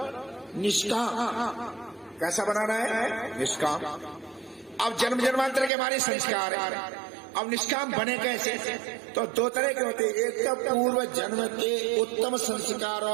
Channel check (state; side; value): drops out; left; at 5.7 s